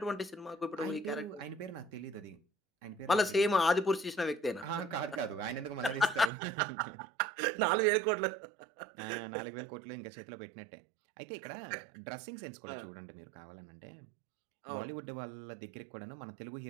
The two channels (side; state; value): left; drops out; at 6.3 s